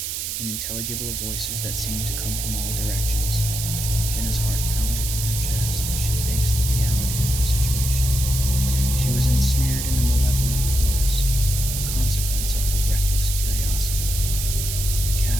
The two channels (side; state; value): right; noise; hiss, 4 dB below the sound